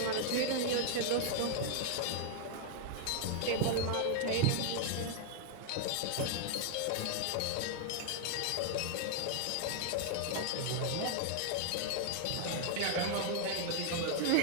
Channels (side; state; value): both; different; correlation 0.00